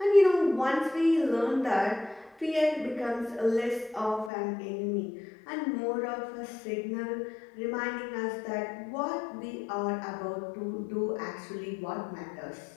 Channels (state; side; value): drops out; right; at 4.3 s